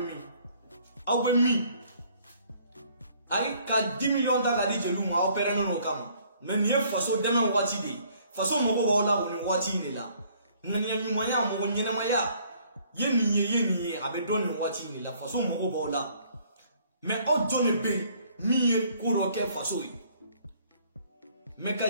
bɛ min ayi ka 10 millions ta ka di jeliw ma aw pɛrɛnnen n'o kama. Mais ni faso dɛmɛ waati de faso mɔgɔ b'aw la o ni waati de la ŋaniya ɲumanya mɔgɔ ɲɛnamaya ye nin ye a bɛ dɔn nin waati de la faso mɔgɔ b'aw la mais aw jɔn de bɛ min ye ko dɔ kɛ faso ye mais ka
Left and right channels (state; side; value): inverted; both; correlation -0.61